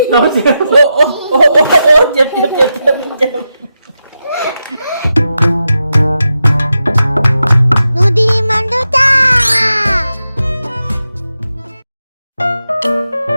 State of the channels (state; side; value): inverted; both; correlation -0.88